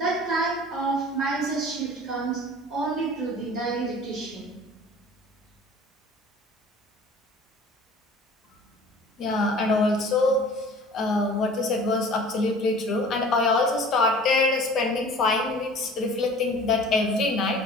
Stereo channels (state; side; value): normal; both; correlation 0.45